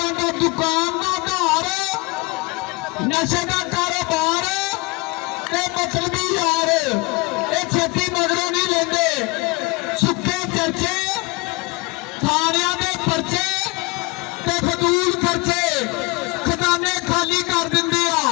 दा दुकान दा धार नशे दा कारोबार ते मतलबी यार ए छेती मगरों नहीं लेंदे सुक्के चर्चे थाणियां दे परचे ते फजूल खर्चे खजाने खाली कर दिंदे आ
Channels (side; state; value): right; quieter; 25.4 dB